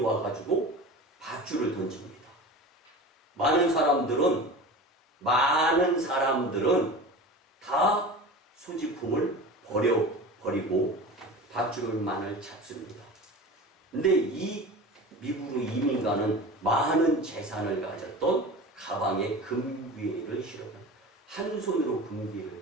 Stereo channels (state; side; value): normal; both; correlation 0.33